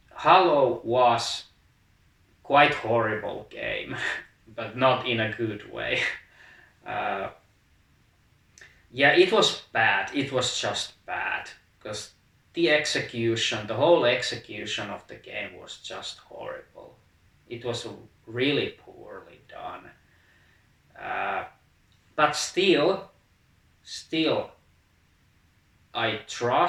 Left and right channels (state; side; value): identical; both; correlation 1.00